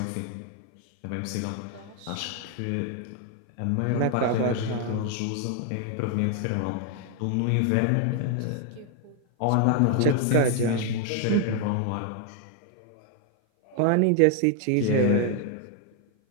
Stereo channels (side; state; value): both; different; correlation 0.00